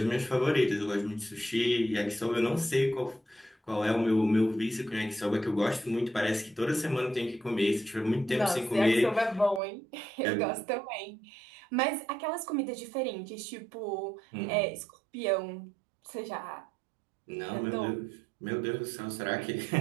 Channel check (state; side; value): drops out; left; at 9.6 s